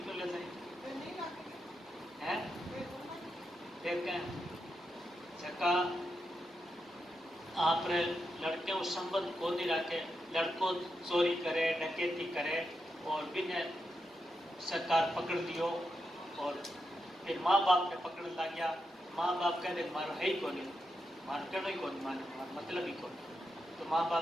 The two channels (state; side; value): normal; both; correlation 0.86